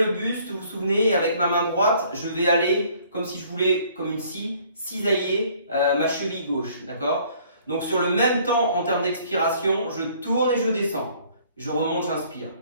buste, vous vous souvenez, et avec ma main droite, je vais aller comme si je voulais, comme une scie, cisailler ma cheville gauche. D'accord? Donc sur le même temps, en termes d'expiration, je tourne et je descends. Je remonte, j'inspire.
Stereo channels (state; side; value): inverted; both; correlation -0.59